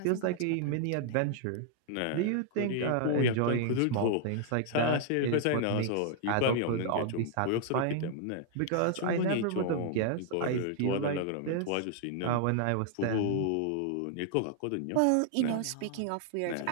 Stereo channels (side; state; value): both; different; correlation 0.00